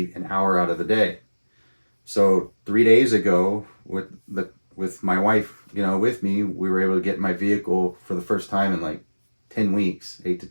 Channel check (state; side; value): inverted; both; correlation -1.00